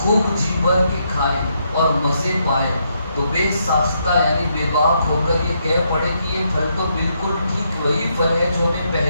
جی بھر کے کھائے اور مزے پائے تو بے ساختہ یعنی بے باک ہو کر یہ کہہ پڑے کہ یہ پھل تو بالکل ٹھیک وہی پھل ہے جو ہمیں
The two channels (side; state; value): both; inverted; correlation -0.77